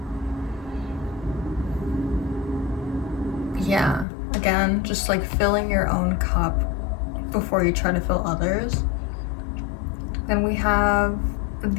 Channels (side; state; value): right; drops out; at 4.0 s